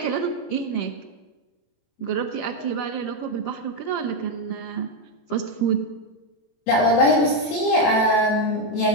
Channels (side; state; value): right; late; 17 ms